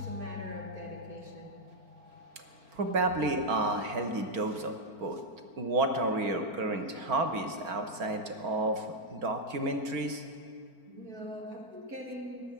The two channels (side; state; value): left; late; 4.4 ms